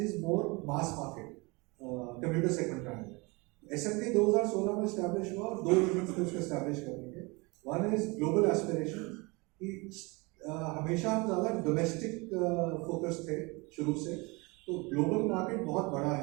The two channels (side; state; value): left; quieter; 26.7 dB